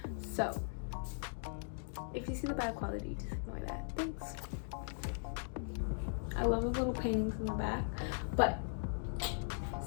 So if you see the bad quality, just ignore that. Thanks. I love the little paintings in the back, but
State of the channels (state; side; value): silent; right; digital silence